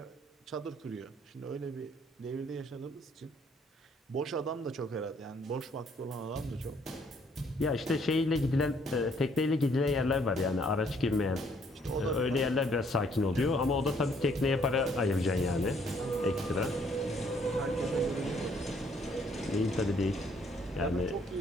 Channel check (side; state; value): both; normal; correlation 0.65